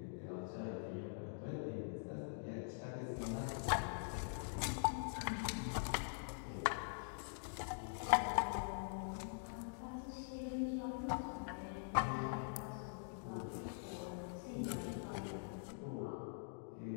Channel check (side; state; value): right; silent; digital silence